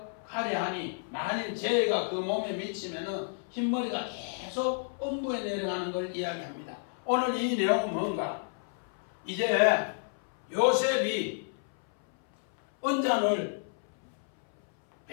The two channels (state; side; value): silent; right; 57 dB below the other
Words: 하니 만일 죄가 그 몸에 미치면은 흰머리가 계속 엄부에 내려가는 걸 이야기합니다. 오늘 이 내용은 뭔가? 이제 요셉이 은잔을